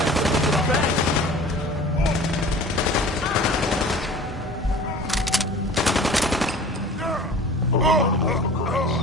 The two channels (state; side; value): noise; right; hum, 20 dB below the sound